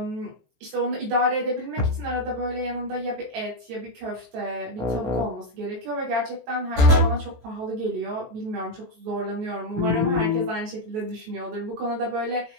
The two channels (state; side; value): late; left; 17 ms